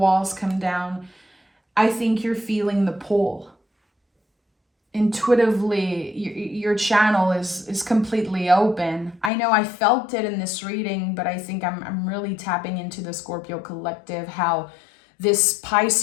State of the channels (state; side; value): drops out; right; at 9.3 s